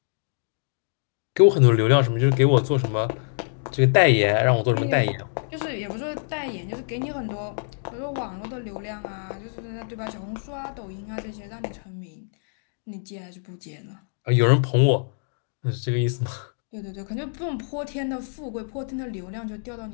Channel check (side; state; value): right; silent; digital silence